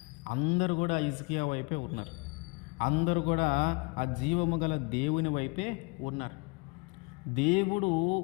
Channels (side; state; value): right; quieter; 29.2 dB